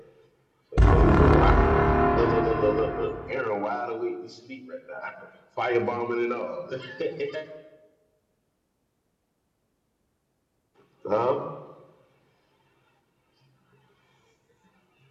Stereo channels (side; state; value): both; identical; correlation 1.00